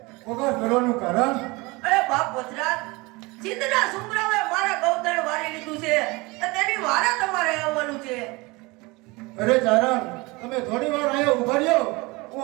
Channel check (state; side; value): quieter; left; 24.3 dB